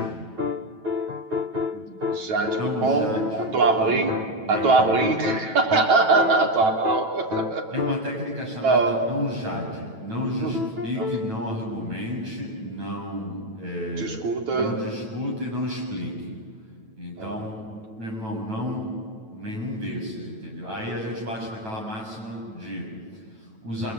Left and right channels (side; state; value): left; late; 9.1 ms